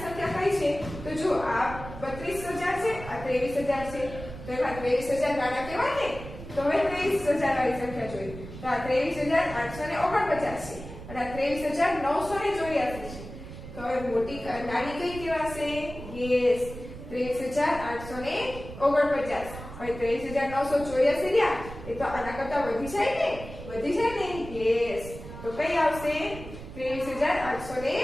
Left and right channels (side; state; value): right; noise; rumble, 12 dB below the sound